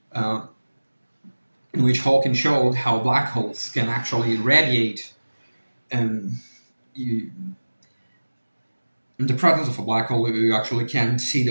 in which Hawking showed how black holes can actually radiate, and in the presence of a black hole, you actually can see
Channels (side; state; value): both; inverted; correlation -1.00